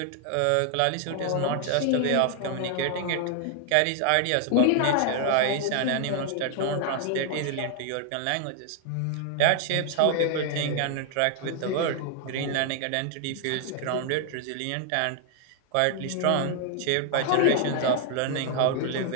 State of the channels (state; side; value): different; both; correlation 0.00